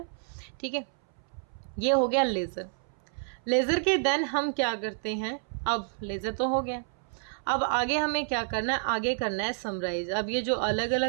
ठीक है। ये हो गया लेज़र। लेज़र के देन हम क्या करते हैं, अब लेज़र तो हो गया, अब आगे हमें क्या करना है, आगे करना है समराइज। अब ये जो अलग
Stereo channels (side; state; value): left; silent; 58 dB below the other